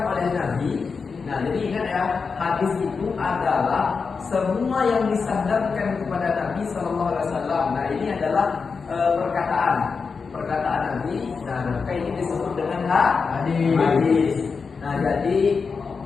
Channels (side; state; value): right; quieter; 5.1 dB